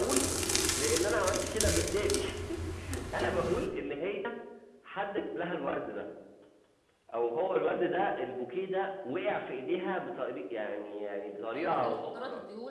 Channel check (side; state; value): both; identical; correlation 1.00